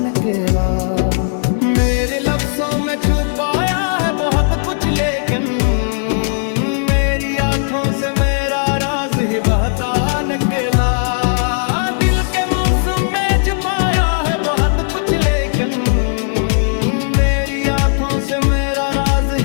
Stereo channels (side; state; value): right; silent; digital silence